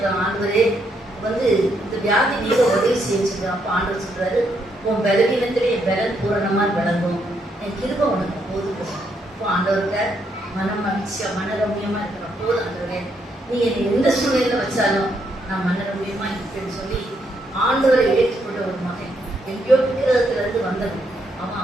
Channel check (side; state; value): both; normal; correlation 0.76